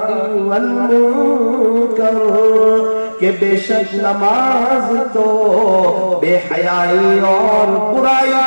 والمنکر, کہ بے شک نماز تو بے حیائی اور برائی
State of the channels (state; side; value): inverted; both; correlation -1.00